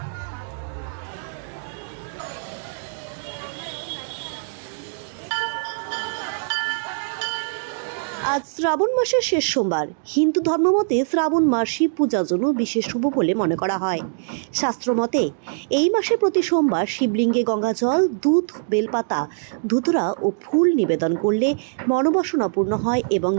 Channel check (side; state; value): left; silent; digital silence